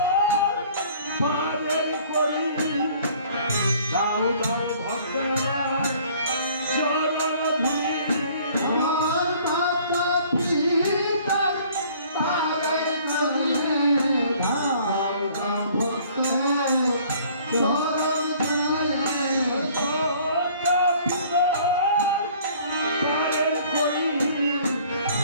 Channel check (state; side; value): inverted; both; correlation -0.55